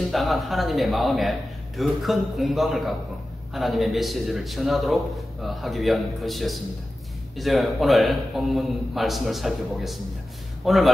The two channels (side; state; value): both; normal; correlation 0.94